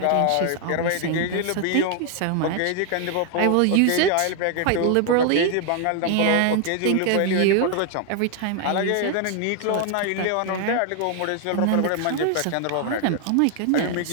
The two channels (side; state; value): both; different; correlation 0.00